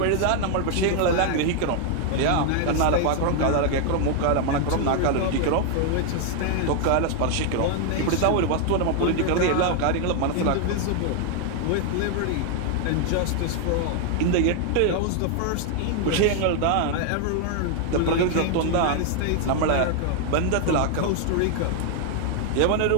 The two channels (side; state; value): both; different; correlation 0.00